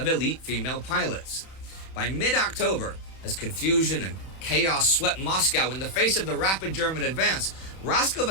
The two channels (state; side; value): late; right; 31 ms